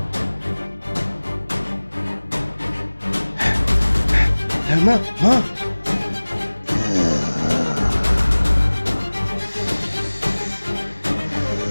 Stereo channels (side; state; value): both; inverted; correlation -1.00